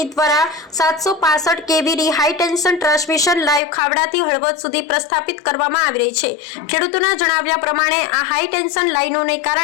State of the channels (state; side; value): drops out; right; at 3.6 s